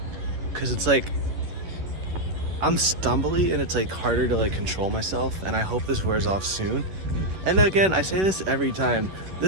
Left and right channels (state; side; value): late; left; 11 ms